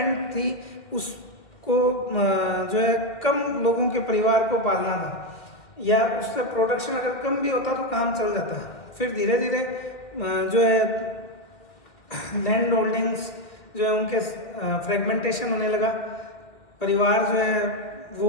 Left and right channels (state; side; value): late; right; 2.2 ms